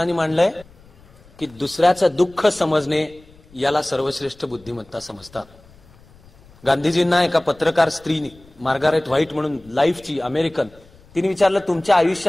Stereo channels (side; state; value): left; noise; rumble, 26 dB below the sound